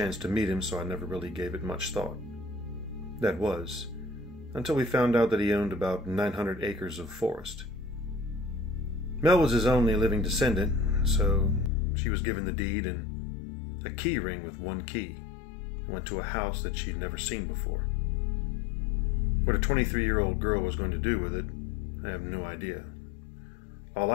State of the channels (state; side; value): drops out; right; at 11.7 s